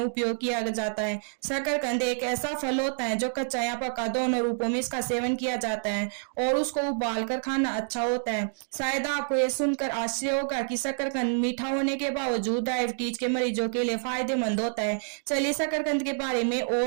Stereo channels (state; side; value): silent; left; digital silence